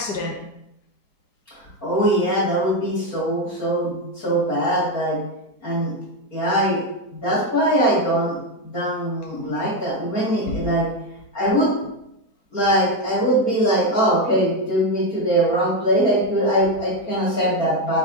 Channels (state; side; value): late; right; 4.3 ms